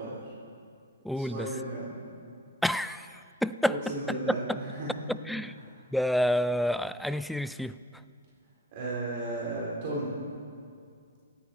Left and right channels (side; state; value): both; normal; correlation 0.64